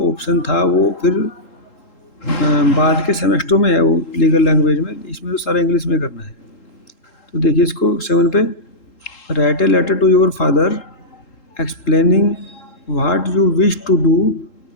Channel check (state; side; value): late; right; 3.8 ms